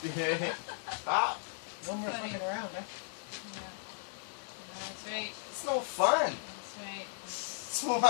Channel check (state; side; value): silent; right; digital silence